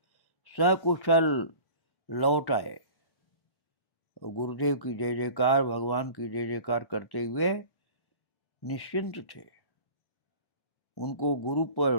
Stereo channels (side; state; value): right; late; 1.1 ms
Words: सकुशल लौट आए। गुरुदेव की जय जयकार, भगवान की जय जयकार करते हुए निश्चिंत थे। उनको गुरु पर